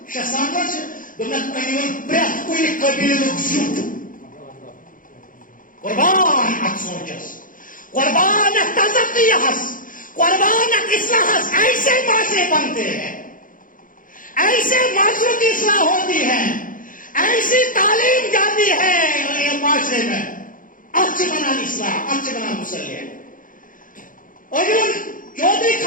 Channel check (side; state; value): right; late; 0.39 ms